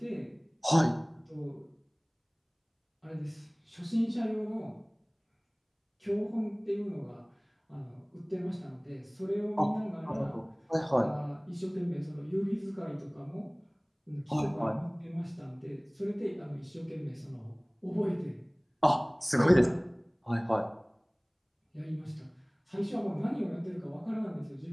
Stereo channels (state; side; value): identical; both; correlation 1.00